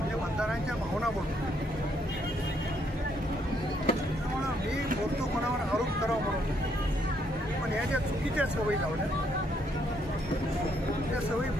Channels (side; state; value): both; normal; correlation 0.72